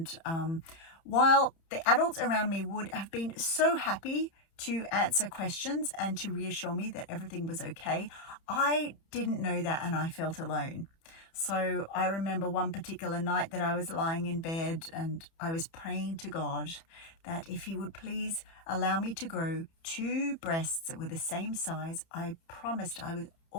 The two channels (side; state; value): right; late; 30 ms